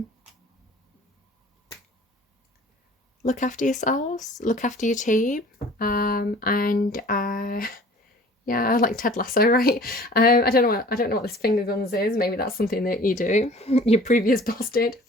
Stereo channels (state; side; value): normal; both; correlation 0.48